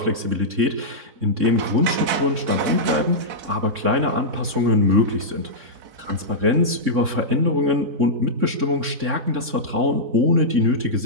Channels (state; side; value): late; left; 3.6 ms